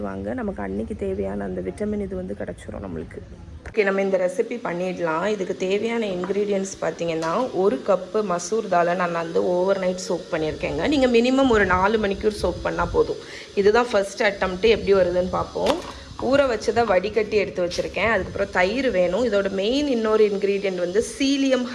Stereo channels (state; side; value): identical; both; correlation 1.00